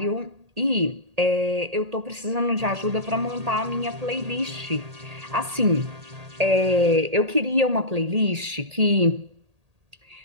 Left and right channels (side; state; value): left; late; 1.8 ms